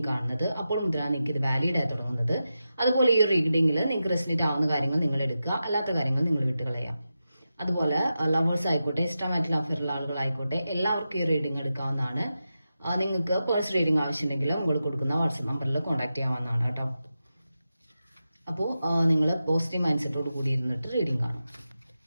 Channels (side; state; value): both; inverted; correlation -0.91